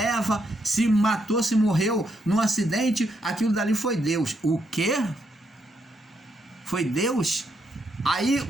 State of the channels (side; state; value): both; normal; correlation 0.78